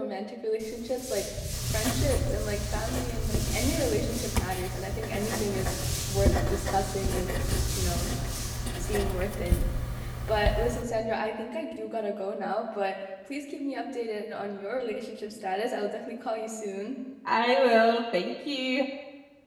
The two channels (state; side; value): identical; both; correlation 1.00